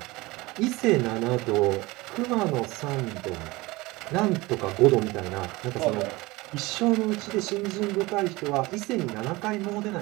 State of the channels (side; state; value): left; quieter; 21.7 dB